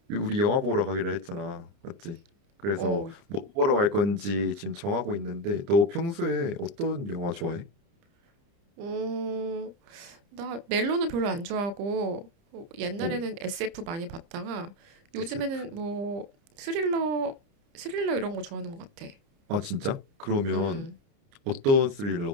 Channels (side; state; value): left; late; 30 ms